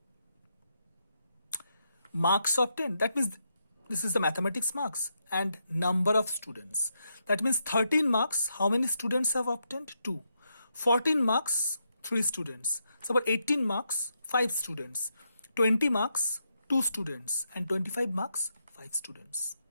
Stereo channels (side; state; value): both; inverted; correlation -0.81